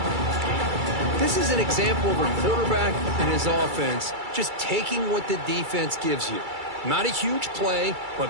This is an example of a quarterback and his offense just taking what the defense gives you. Not a huge play, but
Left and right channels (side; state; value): left; late; 2.3 ms